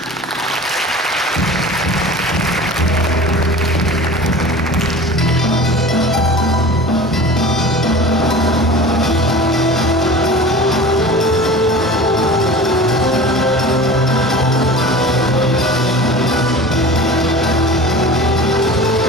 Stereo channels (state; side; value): normal; both; correlation 0.37